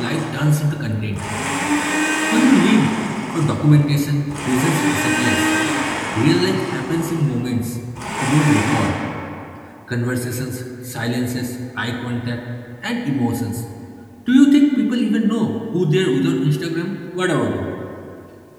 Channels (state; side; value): identical; both; correlation 1.00